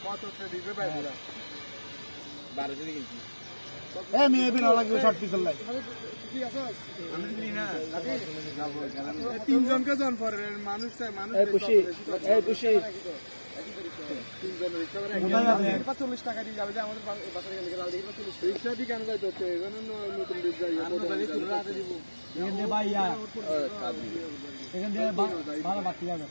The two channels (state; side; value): inverted; both; correlation -1.00